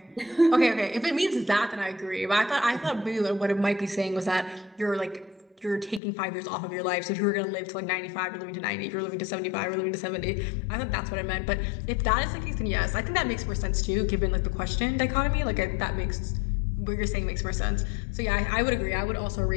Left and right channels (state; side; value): drops out; right; at 6.0 s